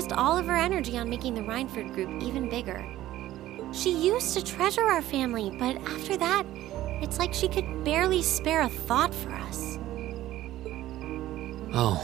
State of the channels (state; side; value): quieter; left; 14.5 dB